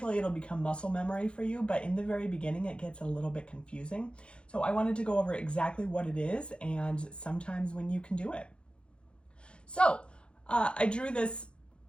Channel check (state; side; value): late; right; 0.056 ms